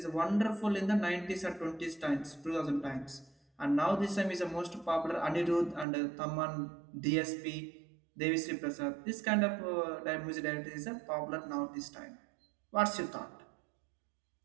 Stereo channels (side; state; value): left; drops out; at 5.9 s